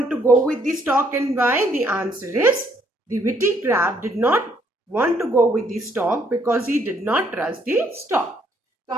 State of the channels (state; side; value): normal; both; correlation 0.68